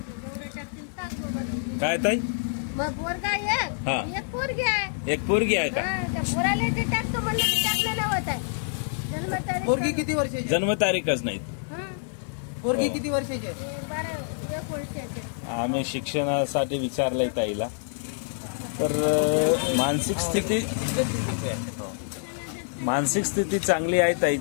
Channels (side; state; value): right; silent; digital silence